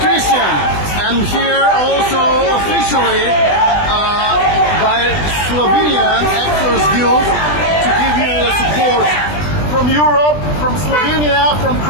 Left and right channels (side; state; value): right; late; 20 ms